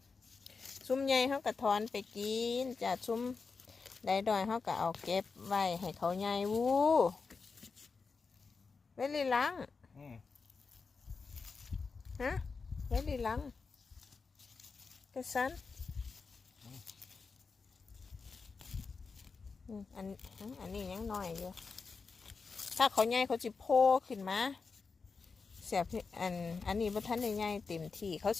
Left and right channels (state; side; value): quieter; right; 4.8 dB